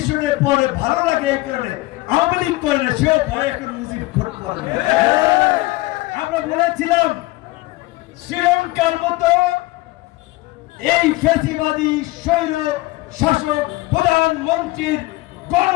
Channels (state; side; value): quieter; right; 20.3 dB